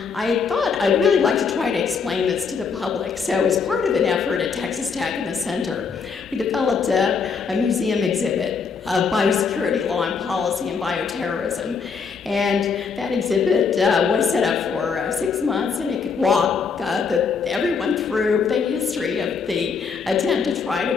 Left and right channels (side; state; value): right; quieter; 5.6 dB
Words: thought I'd really like to try to explain this to the public. So as part of an effort at Texas Tech and the Center, we developed a museum exhibit of biosecurity law and policy and bioterrorism. And that exhibit was set up for 6 months, and it could walk everyone through the history of the attempt to try